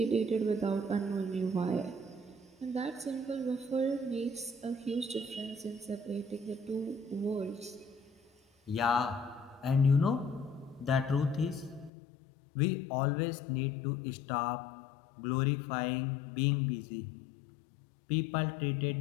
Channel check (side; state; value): right; drops out; at 11.9 s